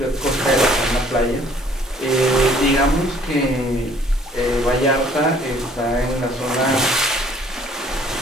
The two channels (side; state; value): both; normal; correlation 0.58